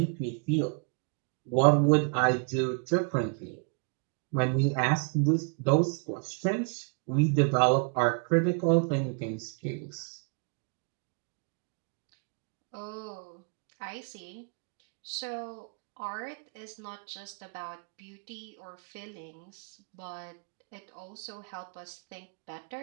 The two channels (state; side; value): quieter; left; 38.7 dB